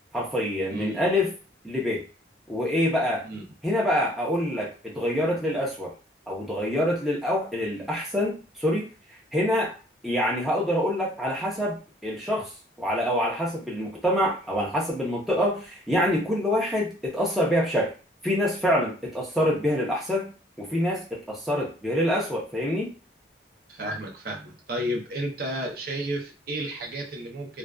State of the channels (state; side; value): normal; both; correlation 0.58